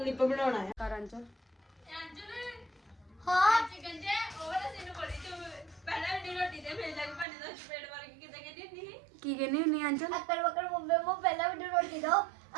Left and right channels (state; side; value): drops out; left; at 7.2 s